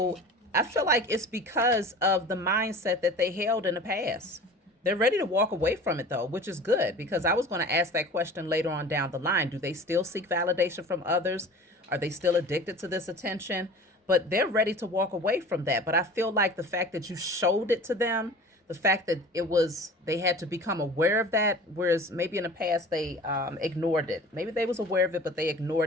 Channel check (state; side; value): normal; both; correlation 0.40